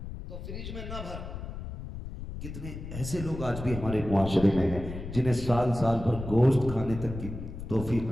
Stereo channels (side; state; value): left; noise; rumble, 9 dB below the sound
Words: تو فریج میں نہ بھر۔ کتنے ایسے لوگ آج بھی ہمارے معاشرے میں ہیں جنہیں سال سال بھر گوشت کھانے تک کی توفیق